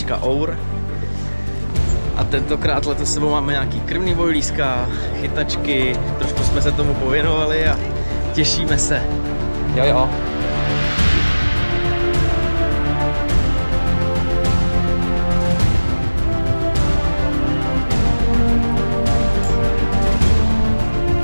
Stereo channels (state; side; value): inverted; both; correlation -1.00